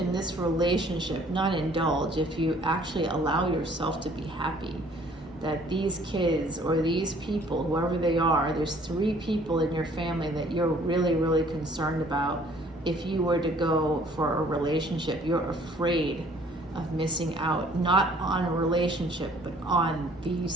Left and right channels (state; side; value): normal; both; correlation 0.57